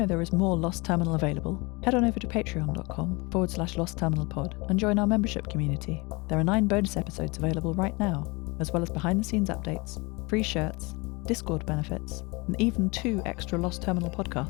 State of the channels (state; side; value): quieter; right; 26.5 dB